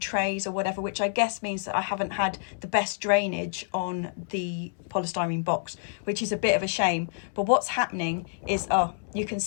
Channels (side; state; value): right; silent; digital silence